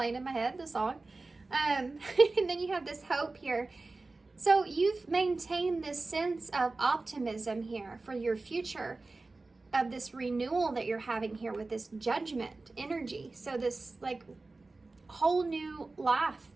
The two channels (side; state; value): left; quieter; 3.4 dB